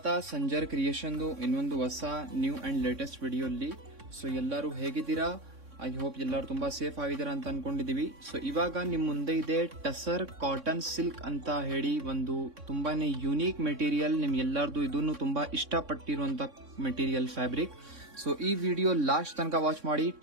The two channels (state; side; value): late; left; 3.6 ms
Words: ಸಂಜರ್ ಕ್ರಿಯೇಷನ್ದು ಇನ್ನೊಂದು ಹೊಸ ನ್ಯೂ ಅಂಡ್ ಲೇಟೆಸ್ಟ್ ವಿಡಿಯೋಲ್ಲಿ. ಸೊ ಎಲ್ಲರೂ ಹೇಗಿದ್ದೀರಾ? ಐ ಹೋಪ್ ಎಲ್ಲರೂ ತುಂಬಾ ಸೇಫ್ ಆಗಿದ್ದೀರಾ ಅಂತ ಅನ್ಕೊಂಡಿದೀವಿ. ಸೊ ಇವಾಗ ನಿಮ್ ಮುಂದೆ ಇದೆ ಟಸರ್ ಕಾಟನ್ ಸಿಲ್ಕ್ ಅಂತ ಹೇಳಿ ಒಂದು ತುಂಬಾನೇ ಯುನೀಕ್ ಮೆಟೀರಿಯಲ್. ನಿಮ್ ಎಲ್ಲಾರ್ದು ಇದನ್ನು ತುಂಬಾ ಇಷ್ಟಪಟ್ಟಿರುವಂತ ಮೆಟೀರಿಯಲ್ ಫ್ಯಾಬ್ರಿಕ್. ಸೊ ಈ ವಿಡಿಯೋ ಲಾಸ್ಟ್ ತನಕ ವಾಚ್ ಮಾಡಿ.